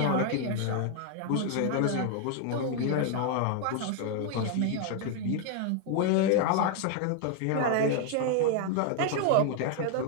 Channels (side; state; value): both; different; correlation 0.00